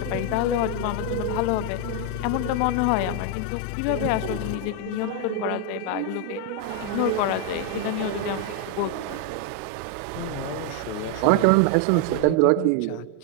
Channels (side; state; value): both; different; correlation 0.01